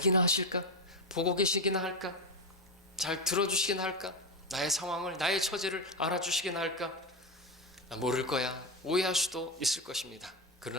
하실까? 보고 계시기나 할까? 잘 들어주시기나 할까? 나의 상황을, 나의 처지를 알아주시기나 할까? 모를 거야. 오해할 수도 있을 것입니다.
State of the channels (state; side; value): normal; both; correlation 0.13